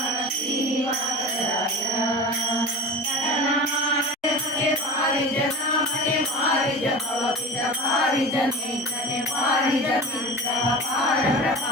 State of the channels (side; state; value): both; normal; correlation 0.32